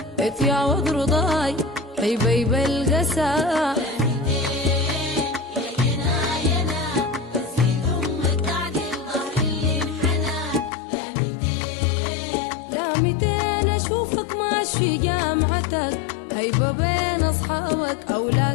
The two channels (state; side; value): drops out; right; at 10.7 s